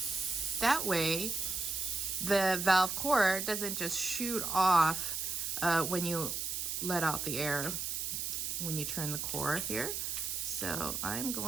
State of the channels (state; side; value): noise; right; hiss, 2 dB below the sound